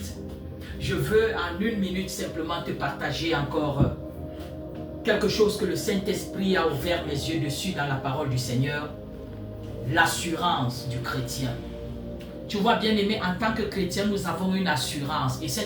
Je veux en 1 minute simplement te partager encore quelque chose que le Saint-Esprit a ouvert mes yeux dessus dans la parole du Seigneur. L'assurance du chrétien. Tu vois bien-aimé, en tant que chrétien, nous avons une assurance et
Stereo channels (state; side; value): identical; both; correlation 1.00